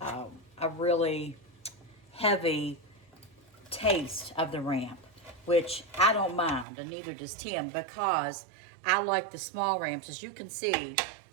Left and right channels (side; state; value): left; drops out; at 6.7 s